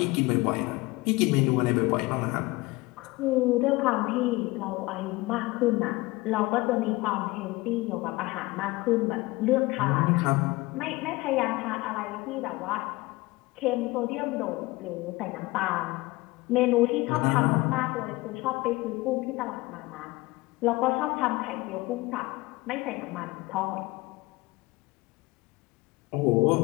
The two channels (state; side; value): quieter; right; 21.6 dB